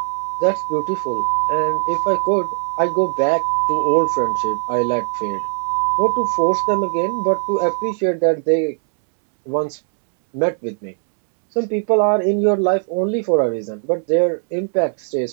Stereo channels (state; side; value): silent; left; 66 dB below the other